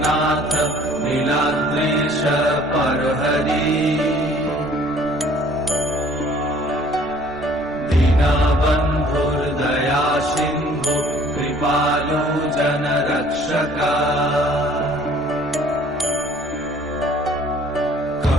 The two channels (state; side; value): normal; both; correlation 0.55